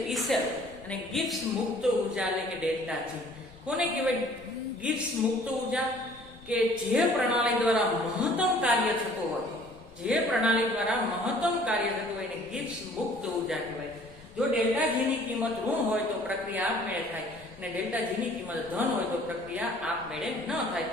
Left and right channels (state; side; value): noise; left; rumble, 24 dB below the sound